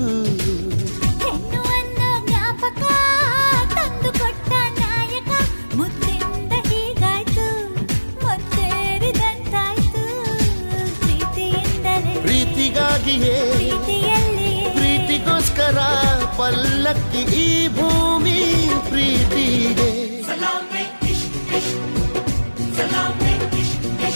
ಹೆಣ್ಣು ಅನ್ನೋ ಜ್ಞಾಪಕ ತಂದು ಕೊಟ್ಟ ನಾಯಕ ಮುದ್ದಿಂದ ಹೀಗಾಯ್ತು ಮುತ್ತೇರಿದಂತಾಯ್ತು ಪ್ರೀತಿಯಿಂದಲೇ ಪ್ರೀತಿಗಾಗಿಯೇ ಪ್ರೀತಿಯಲ್ಲಿಯೇ ಪ್ರೀತಿಗೋಸ್ಕರ ಪಲ್ಲಕ್ಕಿ ಈ ಭೂಮಿ ಪ್ರೀತಿಗೆ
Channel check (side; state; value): both; inverted; correlation -1.00